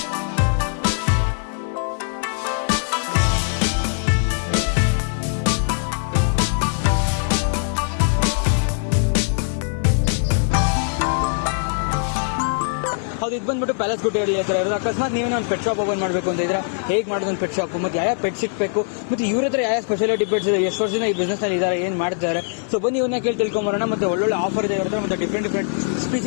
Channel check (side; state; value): right; silent; digital silence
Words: ಇದು ಬಂದ್ಬಿಟ್ಟು ಪ್ಯಾಲೇಸ್ ಗುಟ್ಟೆಯಲ್ಲಿ ಹತ್ರ ಇರೋದು. ಅಕಸ್ಮಾತ್ ನೀವೇನೋ ಒಂದು ಪೆಟ್ ಶಾಪ್ ಓಪನ್ ಮಾಡಬೇಕು ಅಂತ ಇದ್ರೆ ಹೇಗೆ ಮಾಡೋದು ಒಂದು ಪೆಟ್ ಶಾಪ್, ಮತ್ತೆ ಯಾವ ಪೆಟ್ ಸಿಗಬೇಕು, ಮತ್ತೆ ಇವ್ರ ಹತ್ರ ಯಾವ ಸ್ಪೆಷಾಲಿಟಿ ಪೆಟ್ಸ್ ಇದೆ, ಎಷ್ಟು ವರ್ಷದಿಂದ ಈ ಬಿಸ್ನೆಸ್ ಅಲ್ಲಿ ಇದ್ದಾರೆ, ಏನ್ ಮಾಡ್ತಾರೆ. ಸೊ ಬನ್ನಿ ಇವನ್ನ ಕೇಳಿ ತಿಳ್ಕೊಂಬರೋಣ. ಮತ್ತೆ ಒಳ್ಳೊಳ್ಳೆ ಆಫರ್ ಇದೆ ಇರುತ್ತೆ, ಮತ್ತೆ ಡಿಫ್ರೆಂಟ್